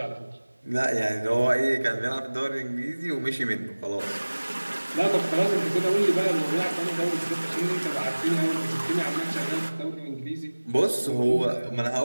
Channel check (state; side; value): inverted; both; correlation -1.00